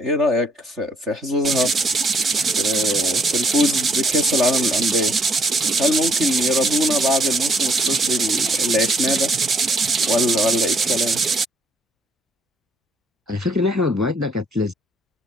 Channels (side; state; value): both; normal; correlation 0.66